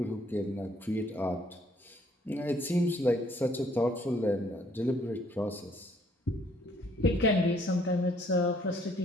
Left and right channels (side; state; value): both; normal; correlation 0.64